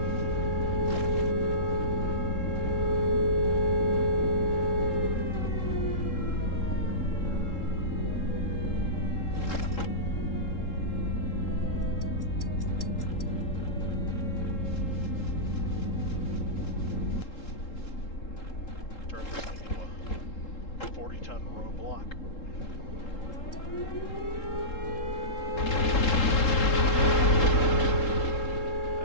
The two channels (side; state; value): right; late; 3.7 ms